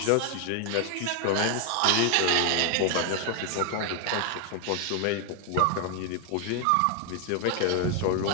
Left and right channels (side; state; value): both; different; correlation 0.01